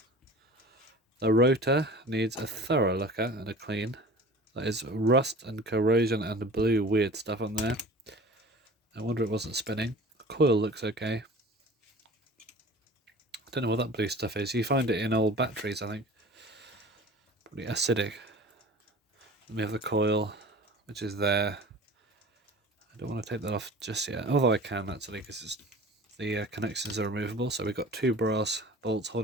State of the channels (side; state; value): both; normal; correlation 0.41